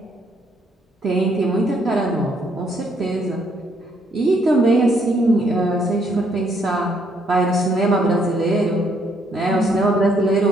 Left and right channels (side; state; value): both; normal; correlation 0.70